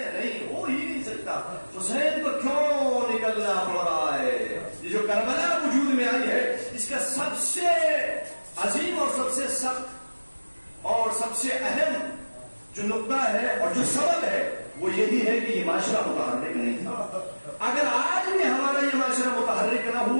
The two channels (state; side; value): inverted; both; correlation -1.00